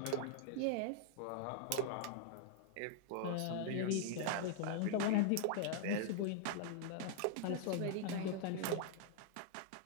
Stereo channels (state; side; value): different; both; correlation -0.01